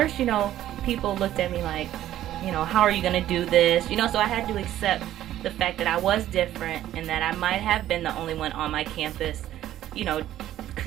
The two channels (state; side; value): quieter; left; 12.9 dB